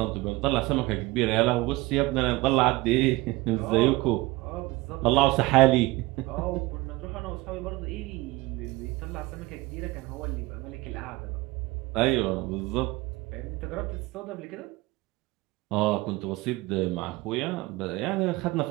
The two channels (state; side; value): quieter; left; 20.5 dB